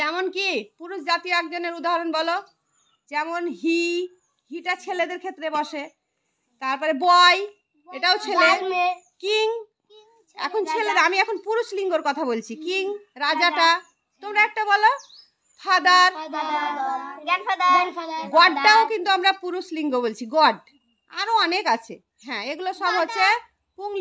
কি পুরুষ জাতীয় একজনের উদাহরণ বলো। যেমন হিটা ছেলেদের ক্ষেত্রে বসে, তারপরে বয়, এটাও ছেলে। কিং, এখন ছেলেরা, আমি এখন পুরুষ লিঙ্গর কথা বলছি। কিং, রাজাটা। তোমরা একটা বলো। ফাদার, গডটাও কিন্তু আমরা পুরুষ লিঙ্গ বলছি, গড। আরো অনেক আছে। হ্যাঁ, এগুলো সব হচ্ছে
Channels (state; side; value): identical; both; correlation 1.00